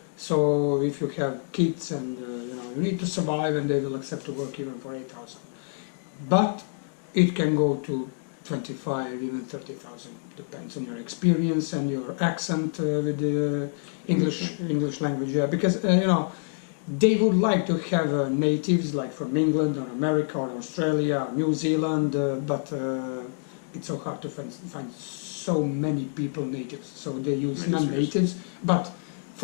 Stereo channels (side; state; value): right; silent; digital silence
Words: so if you have kids and you need to survive, and they will accept to work even for 8,000. But it can go to 25, even 30,000. Depends on your experience and your accent with the English language. Yeah, because they would like to have natives like from England or America or Australia, or New Zealand, but it's so hard to find so many people natives. So they use non-natives. But